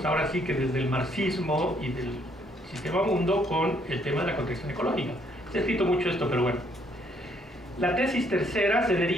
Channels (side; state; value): both; normal; correlation 0.68